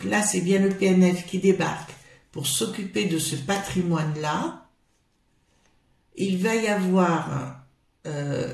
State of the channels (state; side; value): identical; both; correlation 1.00